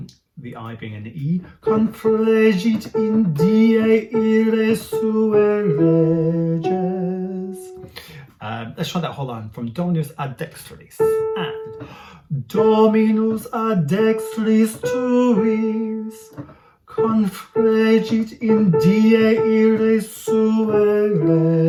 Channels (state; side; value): identical; both; correlation 1.00